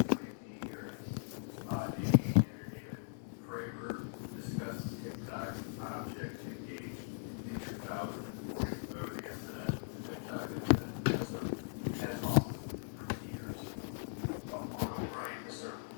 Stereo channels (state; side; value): silent; right; digital silence